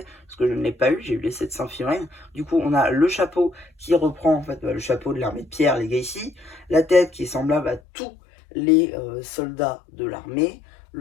parce que je ne l'ai pas eu, j'ai eu les 700 figurines. Du coup, on a le chapeau qui reprend en fait le chapeau de l'armée de pierre, les Legacy, la tête qui est semblable à tous les soldats de l'armée,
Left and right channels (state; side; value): drops out; right; at 7.8 s